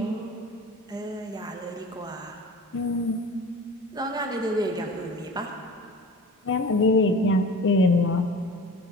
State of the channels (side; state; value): both; normal; correlation 0.38